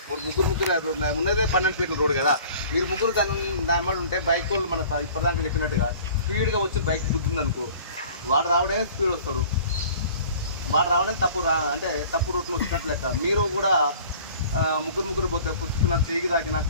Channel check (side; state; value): both; inverted; correlation -0.47